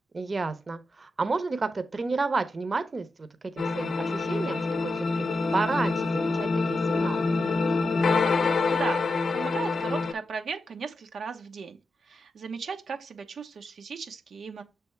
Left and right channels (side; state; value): both; normal; correlation 0.88